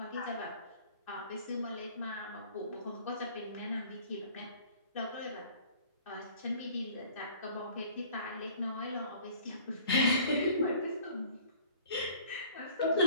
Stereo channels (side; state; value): both; inverted; correlation -0.51